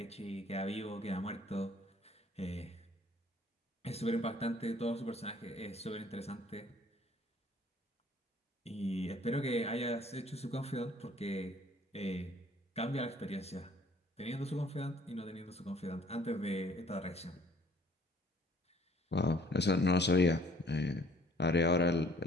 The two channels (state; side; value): normal; both; correlation 0.57